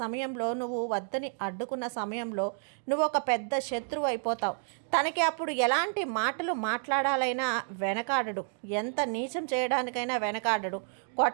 నువ్వు వద్దని అడ్డుకున్న సమయంలో నువ్వు ఒక పెద్ద శత్రువు అయిపోతావు. తనకి అప్పుడు ఎలాంటి మాటలు మాట్లాడాలైనా వెనకాడడు, ఎంత నీచం చేయడానికైనా వెనకాడడు,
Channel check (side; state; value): left; silent; 58 dB below the other